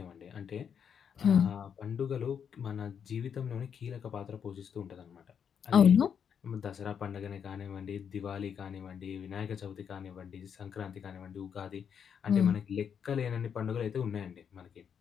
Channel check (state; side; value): quieter; right; 7.6 dB